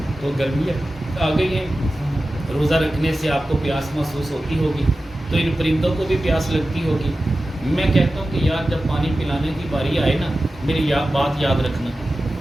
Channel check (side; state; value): both; normal; correlation 0.94